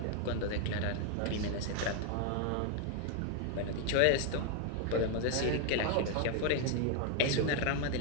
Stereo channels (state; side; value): different; both; correlation 0.00